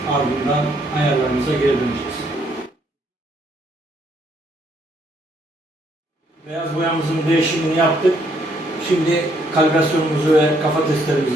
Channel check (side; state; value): both; normal; correlation 0.70